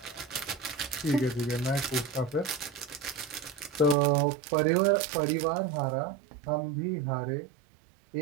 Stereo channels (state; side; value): drops out; left; at 4.0 s